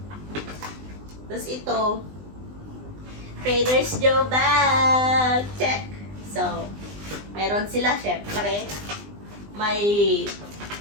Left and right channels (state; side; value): late; left; 20 ms